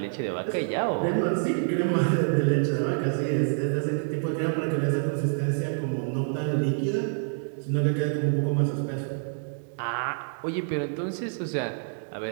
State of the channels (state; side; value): silent; left; digital silence